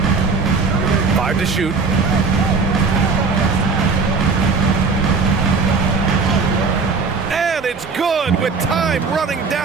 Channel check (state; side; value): quieter; left; 4.5 dB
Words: Five to shoot. And it's good with time running